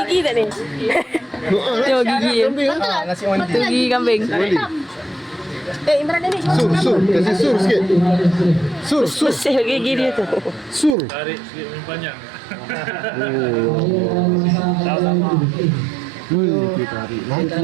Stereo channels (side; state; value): left; drops out; at 11.0 s